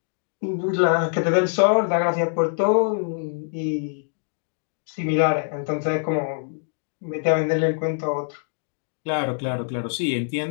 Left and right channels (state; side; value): silent; right; digital silence